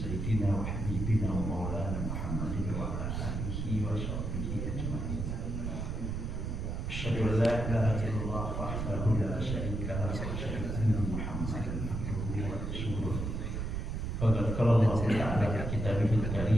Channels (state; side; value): noise; right; rumble, 3 dB below the sound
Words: wa habibina wa maulana Muhammadin wa ala alihi wa sahbihi ajma'in. Asyhadu an la ilaha illallah wahdahu la syarika lahu wa asyhadu anna Muhammadan abduhu wa rasuluh. Qala Allah Ta'ala fi kitabihil